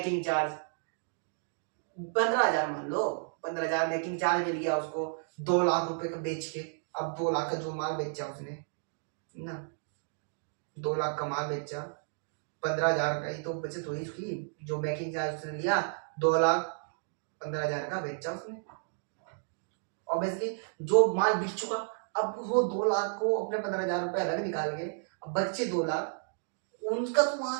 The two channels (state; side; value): silent; left; digital silence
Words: चार्ज 15,000 मान लो, 15,000 मेकिंग चार्ज मिल गया उसको 2 लाख रुपए का बेच के। अब 2 लाख का जो माल बेचा उसने ना, 2 लाख का माल बेचा, 15,000 का ही तो बचत हुई उसकी, जो मेकिंग चार्ज उसने लिया 2,15,000 का बेचा उसने। ऑब्वियसली जो माल बिक चुका, अब वो 2 लाख को अपने 15,000 रुपए अलग निकाल के, अब बच्चे 2 लाख, उनका तो